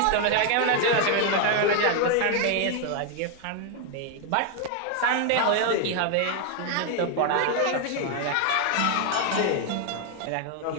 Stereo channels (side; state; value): both; different; correlation 0.00